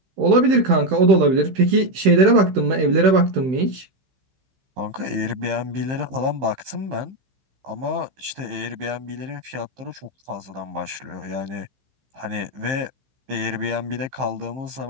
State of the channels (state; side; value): late; left; 15 ms